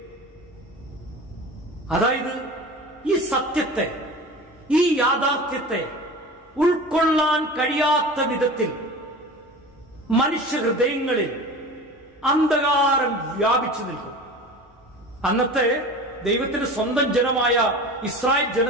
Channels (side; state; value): both; normal; correlation 0.35